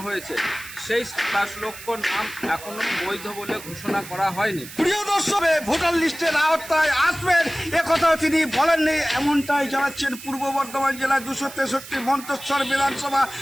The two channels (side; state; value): right; noise; hiss, 14 dB below the sound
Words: হয়েছে, সেই 27 লক্ষ নাম এখনো বৈধ বলে ঘোষণা করা হয়নি। প্রিয় দর্শক, ভোটার লিস্টের আওতায় আসবেন একথাও তিনি বলেননি, এমনটাই জানাচ্ছেন পূর্ব বর্ধমান জেলা 263 মন্তেশ্বর বিধানসভা